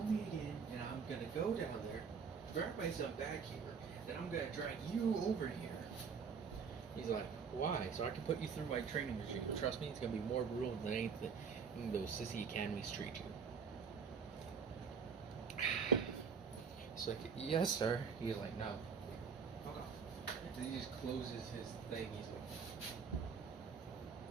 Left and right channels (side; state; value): left; quieter; 6.0 dB